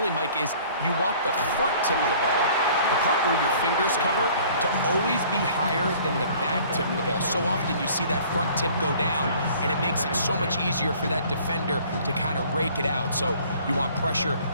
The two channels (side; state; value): both; inverted; correlation -0.53